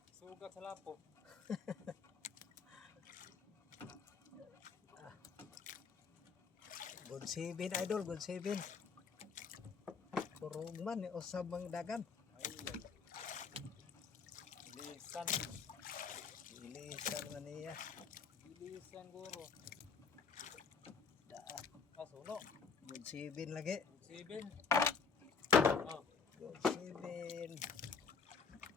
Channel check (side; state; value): right; quieter; 5.5 dB